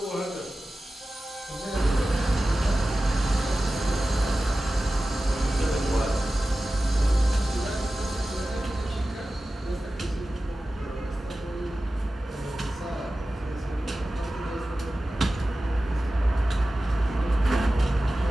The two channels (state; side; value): normal; both; correlation 0.95